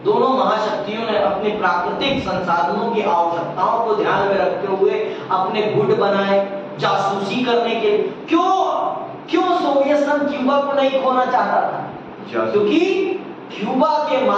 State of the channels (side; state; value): both; identical; correlation 1.00